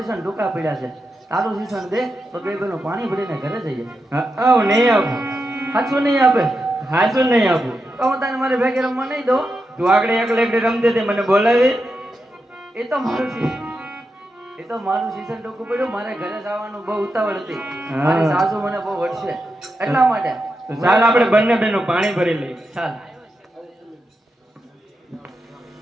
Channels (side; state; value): both; normal; correlation 0.87